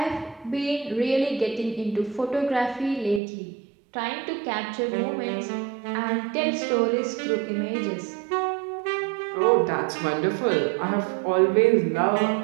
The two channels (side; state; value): left; drops out; at 3.2 s